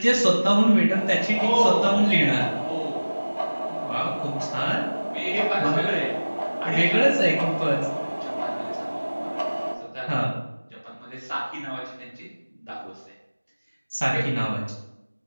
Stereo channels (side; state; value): both; inverted; correlation -1.00